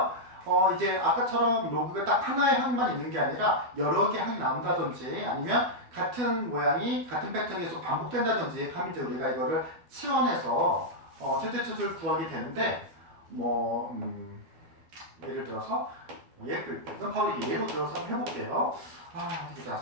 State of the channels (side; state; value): left; late; 12 ms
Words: 이제 아까처럼 로그가 딱 하나의 항만 있는 게 아니라 여러 개 항이 나온다든지 아니면 같은 모양이 같은 패턴이 계속 반복된다든지 하면 이제 우리가 이거를 치환해서 최대치수를 구하게 되는데 예를 들어서 바로 이 예로 들어서 한번 해볼게요. 이제